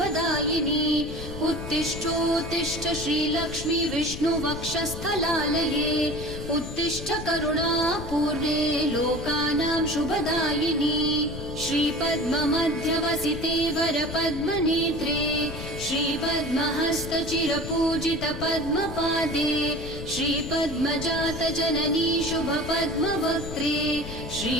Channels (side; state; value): left; noise; rumble, 9 dB below the sound